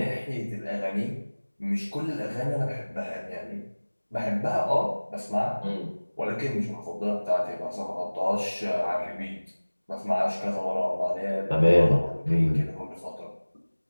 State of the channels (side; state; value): both; inverted; correlation -1.00